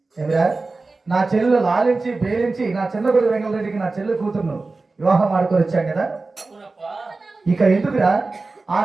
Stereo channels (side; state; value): left; quieter; 3.6 dB